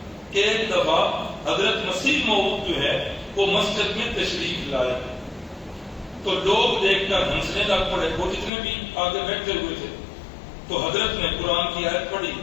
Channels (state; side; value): drops out; right; at 8.5 s